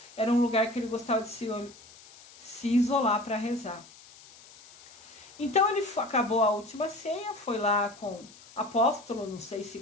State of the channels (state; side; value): noise; left; hiss, 22 dB below the sound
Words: Era um lugar que ele gostava de se isolar para rezar. Então ele acabou a última ceia, foi lá com apóstolo, não sei se